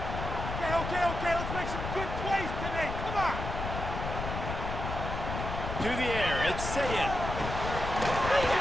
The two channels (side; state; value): left; noise; rumble, 5 dB below the sound